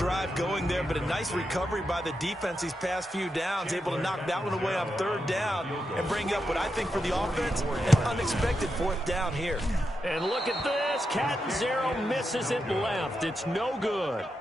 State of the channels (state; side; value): normal; both; correlation 0.86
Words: going there, but a nice recovery by the defense these past few downs, able to knock that one away on third down and bring up what I think for the offense, an unexpected 4th down here. And look at this. Cat Zero misses it left. It's no good.